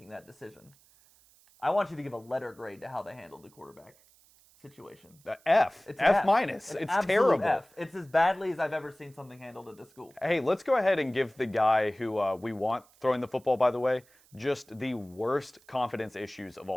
that decision, I want you to give a letter grade to how they handled the quarterback situation. F. It's F minus. It's terrible. F. It's as badly as I've ever seen something handled at this school. Hey, let's go ahead and give the guy who we want throwing the football, by the way, just the worst confidence issues of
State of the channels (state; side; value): noise; right; hiss, 29 dB below the sound